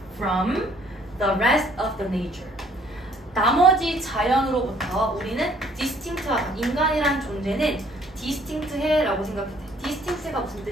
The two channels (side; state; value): both; normal; correlation 0.61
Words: from the rest of the nature. 나머지 자연으로부터 우리는 distinct하다. 인간이란 존재는 distinct해라고 생각했대. distinct가 무슨